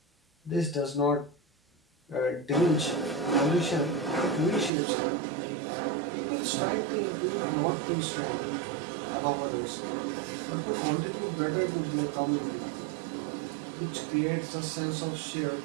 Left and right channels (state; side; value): drops out; left; at 4.7 s